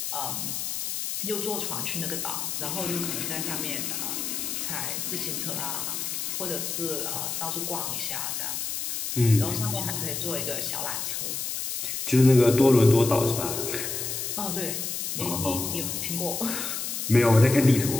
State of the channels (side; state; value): left; noise; hiss, 3 dB below the sound